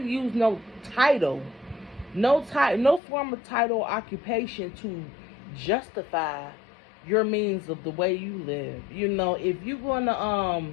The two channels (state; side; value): drops out; right; at 3.0 s